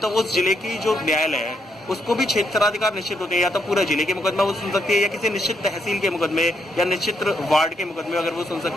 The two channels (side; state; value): both; normal; correlation 0.76